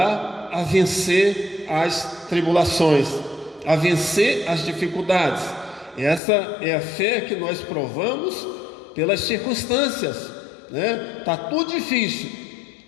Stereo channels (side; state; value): right; drops out; at 6.2 s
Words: a vencer as tribulações, a vencer as dificuldades. Essa é a fé que nós provamos pelas circunstâncias, né? Está tudo difícil,